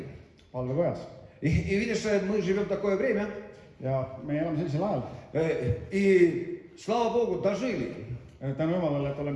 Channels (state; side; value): identical; both; correlation 1.00